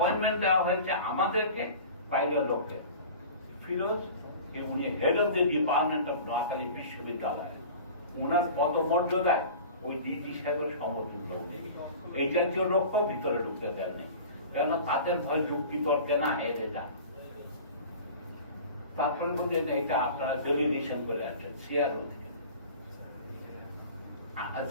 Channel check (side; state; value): both; inverted; correlation -0.39